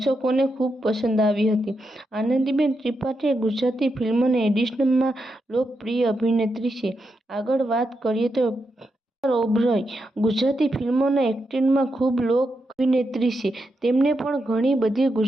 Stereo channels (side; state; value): both; normal; correlation 0.85